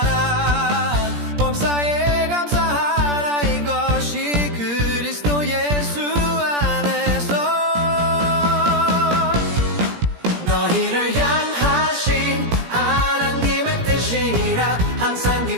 범사에 감사하라. 이것이 그리스도 예수 안에서 너희를 향하신 하나님의 뜻이니라. 항상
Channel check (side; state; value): left; late; 17 ms